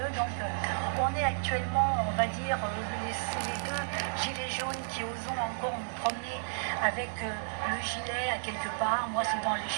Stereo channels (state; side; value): silent; left; digital silence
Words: donc on est actuellement, on va dire, les deux gilets jaunes qui osent encore nous promener avec le gilet à quelque part, moi c'est dans les